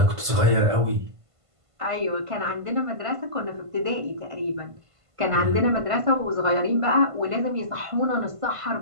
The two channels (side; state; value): left; late; 1.5 ms